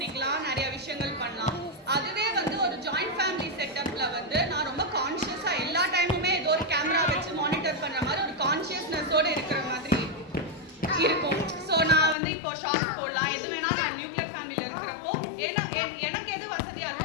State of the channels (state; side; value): drops out; right; at 12.2 s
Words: நிறைய விஷயங்கள் பண்ணலாம். அதுவே வந்து ஒரு ஜாயிண்ட் ஃபேமிலி செட்டப்ல வந்து நான் ரொம்ப கான்ஷியஸா எல்லா டைமுமே ஏதோ ஒரு கேமரா வச்சு மானிட்டர் பண்ற மாதிரி ஒரு கான்ஷியஸ்னஸோட இருக்கிற மாதிரி இருக்கும். ஸோ நான் வந்து இப்போ ஷார்ட்ஸ் போடலாம், எது வேணா நான் நியூக்ளியர் ஃபேமிலியில் இருக்கிறப்போ எனக்கு எது வசதியாக